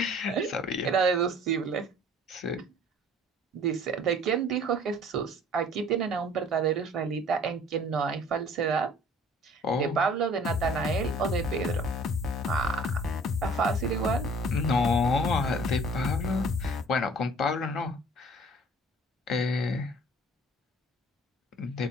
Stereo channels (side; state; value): both; normal; correlation 0.52